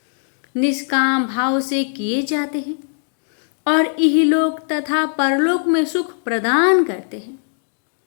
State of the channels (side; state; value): right; silent; digital silence